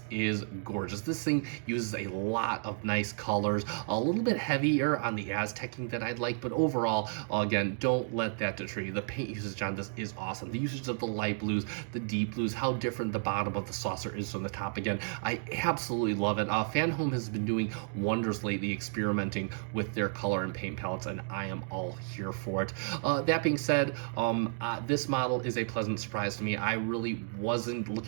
is gorgeous. This thing uses a lot of nice colors, a little bit heavier on the Aztecing than I'd like, but overall, again, don't let that deter you. The paint usage on this is awesome. The usage of the light blues, the deep blues, how different the bottom of the saucer is from the top. Again, I absolutely love it. Fanhome has been doing wonders lately, experimenting with their color and paint palettes, and I am all here for it. That being said, this model is a pleasant surprise to me. I really wasn't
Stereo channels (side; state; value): left; silent; 56 dB below the other